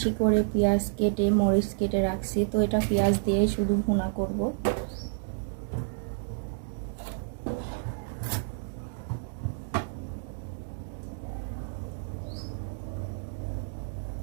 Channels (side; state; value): left; silent; digital silence